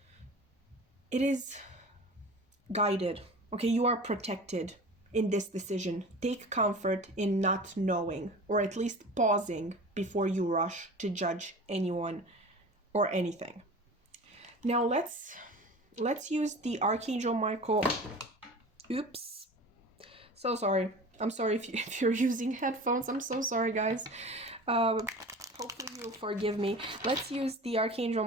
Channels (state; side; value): normal; both; correlation 0.37